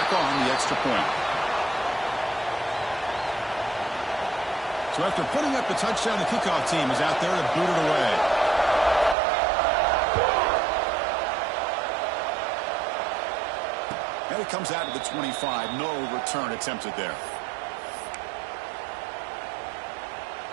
on the extra point. So after putting up the touchdown, the kickoff team is out there to boot it away. And it comes out to the 25. No return attempted there.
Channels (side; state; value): left; drops out; at 9.2 s